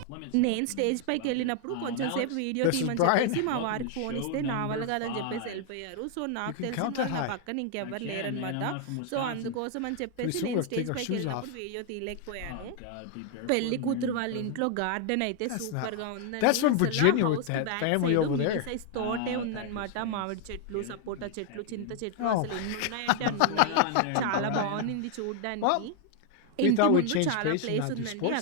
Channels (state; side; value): different; both; correlation 0.00